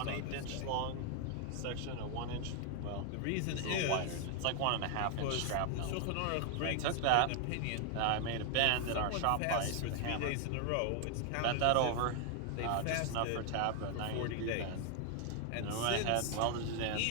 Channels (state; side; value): different; both; correlation 0.00